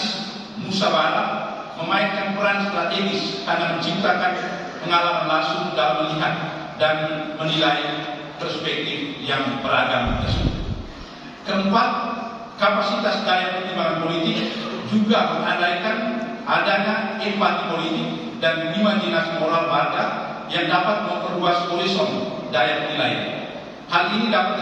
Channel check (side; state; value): both; identical; correlation 1.00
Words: musyawarah memainkan peran strategis karena menciptakan pengalaman langsung dalam melihat dan menilai perspektif yang beragam tersebut. Keempat, kapasitas daya pertimbangan politik juga mengandaikan adanya empati politik dan imajinasi moral warga yang dapat memperluas horizon daya penilaian. Hal ini